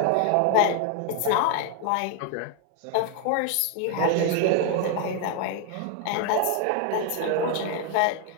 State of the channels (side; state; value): both; different; correlation 0.00